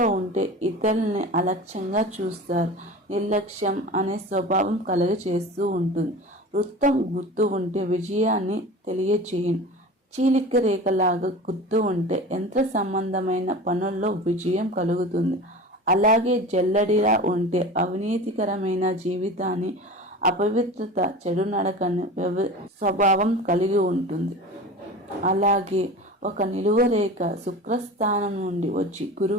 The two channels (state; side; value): normal; both; correlation 0.34